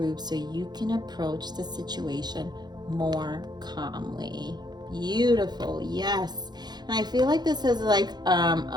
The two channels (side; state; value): left; late; 0.20 ms